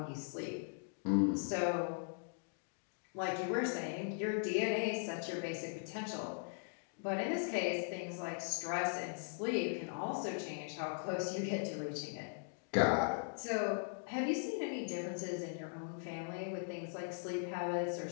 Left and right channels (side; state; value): right; silent; digital silence